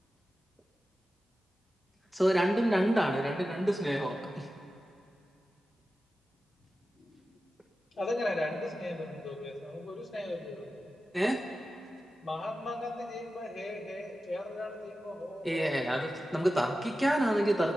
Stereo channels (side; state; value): both; normal; correlation 0.93